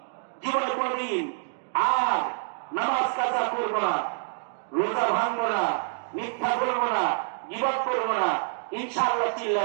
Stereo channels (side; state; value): left; silent; digital silence